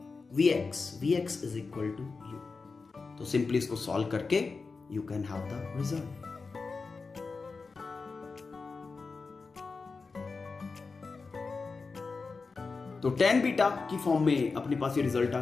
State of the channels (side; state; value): right; quieter; 4.4 dB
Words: vx is equal to u, तो simply इसको सॉल्व करके you can have the result. तो tan beta की form में अपने पास ये result आ